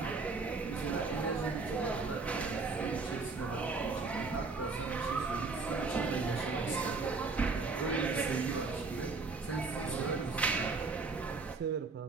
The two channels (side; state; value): left; quieter; 4.1 dB